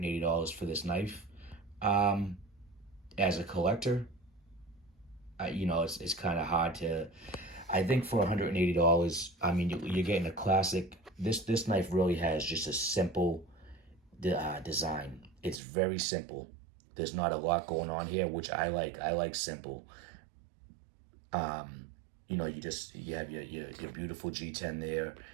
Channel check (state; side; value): drops out; left; at 15.6 s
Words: for this knife? As a collector, it's kind of hard to. I think for $180, you're getting a classic. This knife really has just a simple design. It's very simple. There's not a lot going on here, which I like. I like simple. You have your beautiful G10 there.